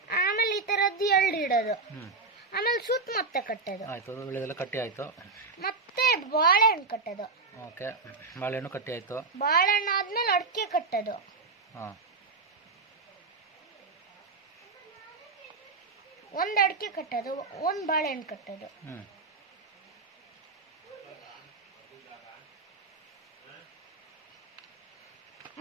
ಆಮೇಲೆ ಈ ತರದ್ದು 2 ಇಡೋದು. ಆಮೇಲೆ ಸುತ್ತ ಮತ್ತೆ ಕಟ್ಟೋದು. ಆಯ್ತು, ವಿಳೆದೆಲ್ಲ ಕಟ್ಟಿ ಆಯ್ತು. ಮತ್ತೆ ಬಾಳೆಹಣ್ಣು ಕಟ್ಟೋದು. ಓಕೆ, ಬಾಳೆಹಣ್ಣು ಕಟ್ಟಿ ಆಯ್ತು. ಬಾಳೆಹಣ್ಣು ಆದ್ಮೇಲೆ ಅಡಿಕೆ ಕಟ್ಟೋದು. ಒಂದು ಅಡಿಕೆ ಕಟ್ಟೋದು, ಒಂದು ಬಾಳೆಹಣ್ಣು ಕಟ್ಟೋದು.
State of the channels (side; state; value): left; quieter; 4.1 dB